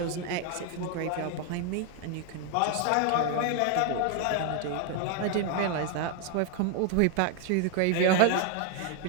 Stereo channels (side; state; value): both; different; correlation 0.01